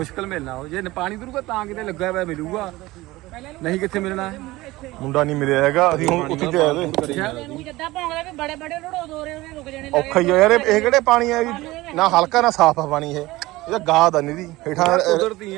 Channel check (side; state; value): left; quieter; 19.1 dB